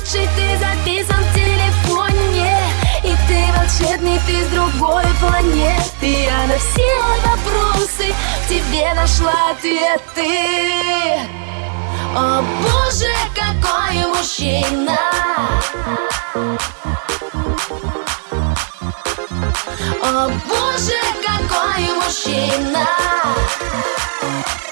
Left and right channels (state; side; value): silent; left; digital silence